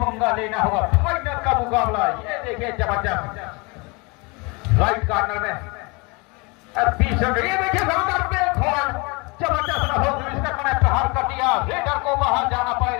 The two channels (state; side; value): quieter; right; 28.0 dB